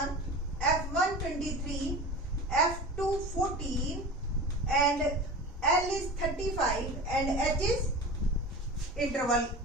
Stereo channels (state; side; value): normal; both; correlation 0.33